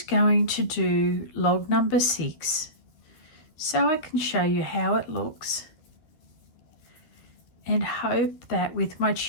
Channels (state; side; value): late; right; 12 ms